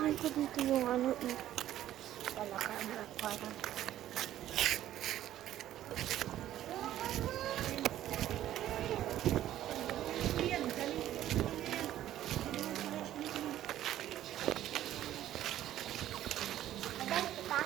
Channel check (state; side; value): quieter; left; 12.7 dB